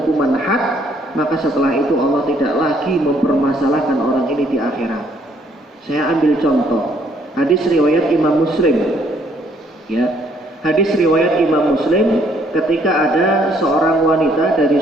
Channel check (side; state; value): both; normal; correlation 0.66